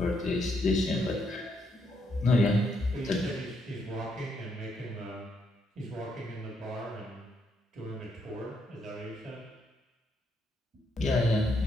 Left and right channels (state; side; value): normal; both; correlation 0.76